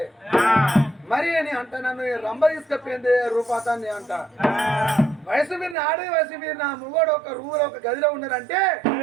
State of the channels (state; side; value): drops out; left; at 5.8 s